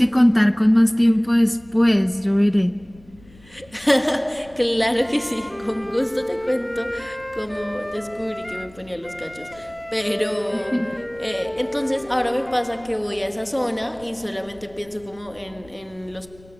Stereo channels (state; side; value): noise; left; rumble, 25 dB below the sound